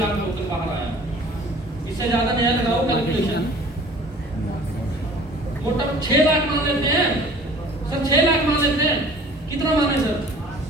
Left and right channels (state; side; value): normal; both; correlation 0.48